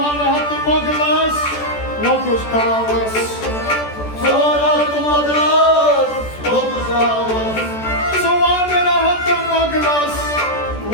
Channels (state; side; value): late; right; 14 ms